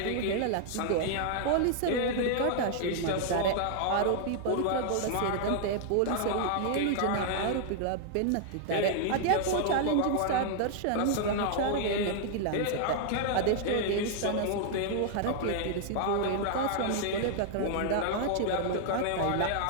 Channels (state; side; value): different; both; correlation -0.01